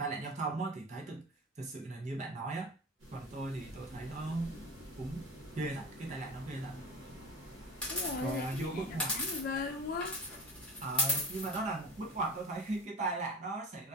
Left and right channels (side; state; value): both; normal; correlation 0.32